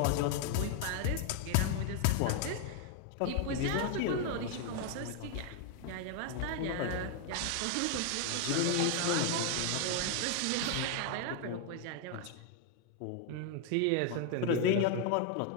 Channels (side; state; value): both; different; correlation 0.00